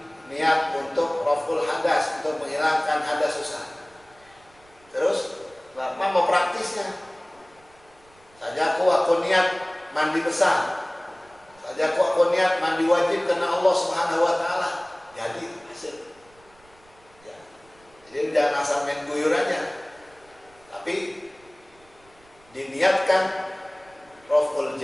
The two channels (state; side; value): noise; right; rumble, 29 dB below the sound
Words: niat untuk raf'ul hadas, untuk menghilangkan hadas susah. Terus apa mau praktisnya? Saja aku niat mandi besar. Saja aku niat mandi wajib karena Allah Subhanahu wa taala. Jadi hasil. Ya. Jadi jangan asal main guyur aja. Tapi niatkan raf'ul